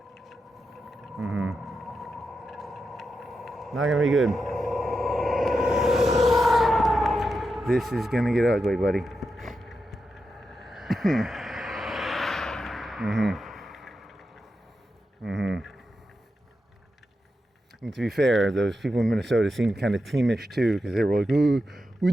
Not gonna be good. This is gonna get ugly, buddy. And to be fair, those people in Minnesota seemed kind of teamish too, because they were like, "Oh, we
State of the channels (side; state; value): both; normal; correlation 0.88